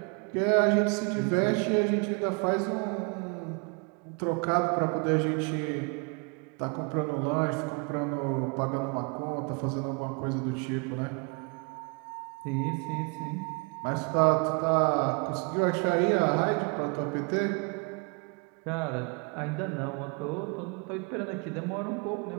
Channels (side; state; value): left; quieter; 33.6 dB